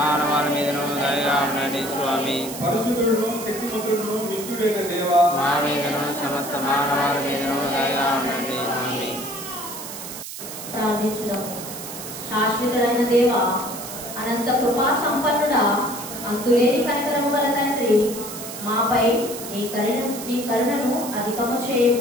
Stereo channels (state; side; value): noise; right; hiss, 10 dB below the sound